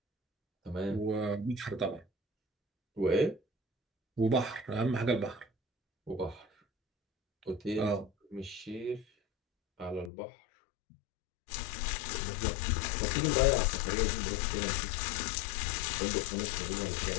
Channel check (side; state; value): right; drops out; at 10.1 s